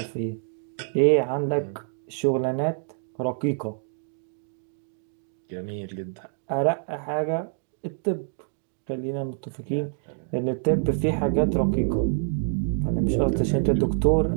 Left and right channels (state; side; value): silent; left; digital silence